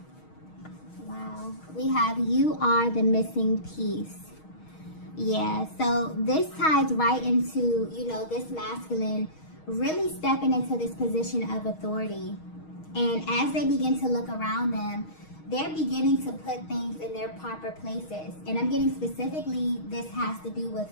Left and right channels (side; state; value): right; late; 6.4 ms